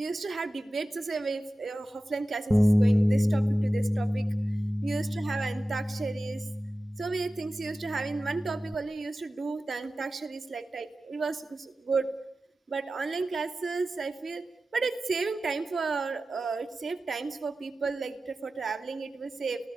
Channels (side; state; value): both; normal; correlation 0.95